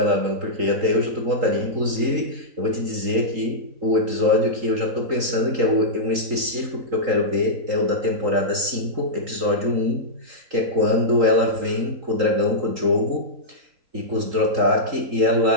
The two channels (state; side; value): late; left; 3.8 ms